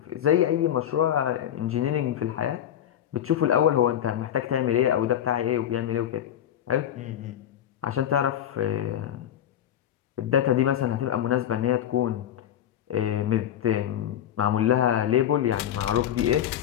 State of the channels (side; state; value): right; quieter; 10.5 dB